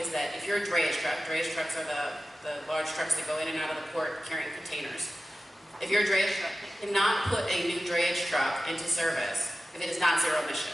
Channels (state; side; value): normal; both; correlation 0.94